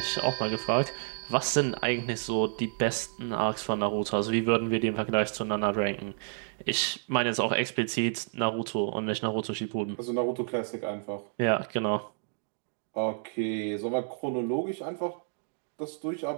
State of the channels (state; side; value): silent; left; digital silence